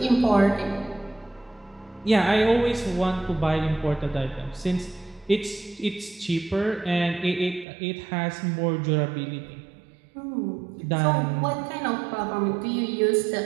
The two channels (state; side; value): drops out; left; at 7.7 s